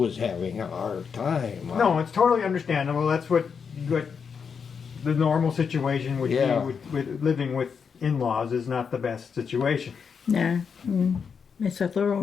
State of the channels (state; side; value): quieter; right; 6.3 dB